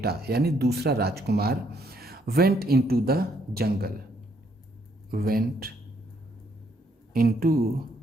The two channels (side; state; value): both; normal; correlation 0.70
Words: यानी दूसरा राजकुमार went into the jungle, went into